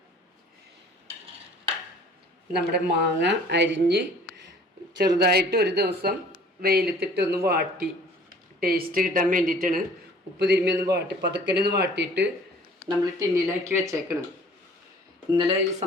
നമ്മുടെ മാങ്ങ അരിഞ്ഞ് ചെറുതായിട്ട് ഒരു ദിവസം വെയിലത്തിട്ട് ഒന്ന് വാട്ടി ടേസ്റ്റ് കിട്ടാൻ വേണ്ടിയിട്ടാണ്. ഉപ്പ് തിരുമ്മി ഒന്ന് വാട്ടി പതുക്കനൊന്ന് വാട്ടിയിട്ട് നമ്മൾ ടിന്നിലാക്കി വെച്ചേക്കണം. ഇന്നലെ ഈ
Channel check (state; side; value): normal; both; correlation 0.51